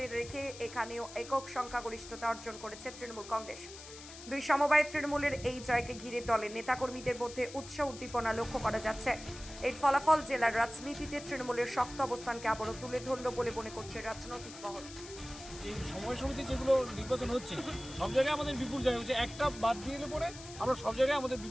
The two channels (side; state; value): left; noise; hiss, 15 dB below the sound